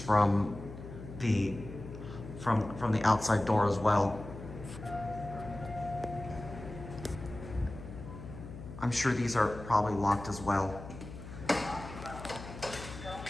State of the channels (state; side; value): noise; left; hum, 12 dB below the sound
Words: the outside door as well. I'm sure these are probably locked as well.